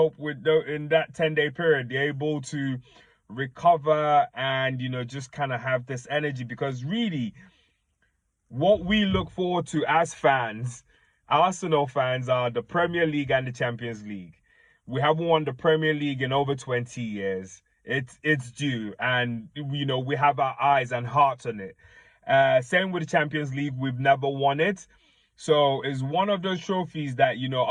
in that 10-day period they're able to recover and, you know, just kind of have this energy, because really what we look forward to as fans, Arsenal fans, are the Premier League and the Champions League. We haven't won the Premier League in over 20 years. It's due, and you know, we have our eyes and hearts on it. Same with the Champions League, we've never won it. So it's one of those trophies that, you know,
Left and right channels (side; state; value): both; identical; correlation 1.00